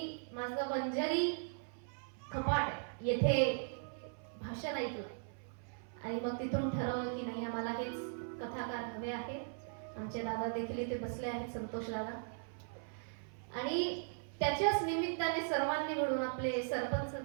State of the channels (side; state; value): left; silent; 52 dB below the other